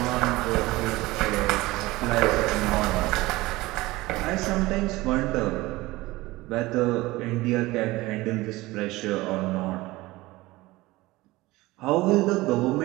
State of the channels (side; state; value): left; quieter; 19.7 dB